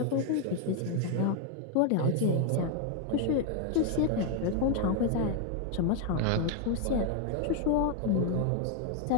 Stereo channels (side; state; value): both; different; correlation 0.01